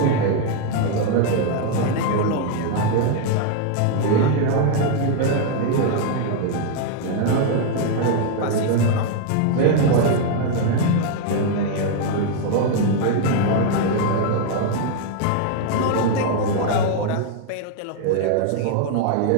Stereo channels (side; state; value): both; different; correlation 0.00